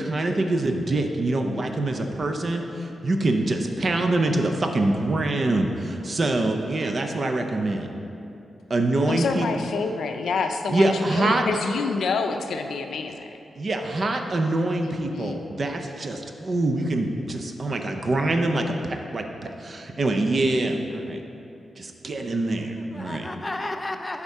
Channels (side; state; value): both; normal; correlation 0.87